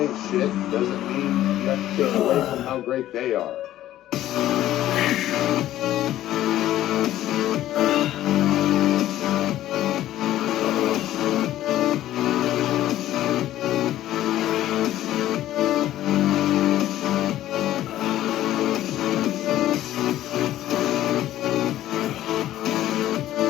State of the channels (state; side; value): quieter; right; 13.5 dB